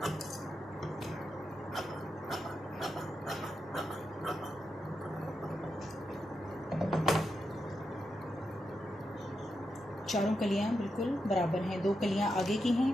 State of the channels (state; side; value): normal; both; correlation 0.86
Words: चारों कलियां बिल्कुल बराबर हैं। 2 कलियां आगे की हैं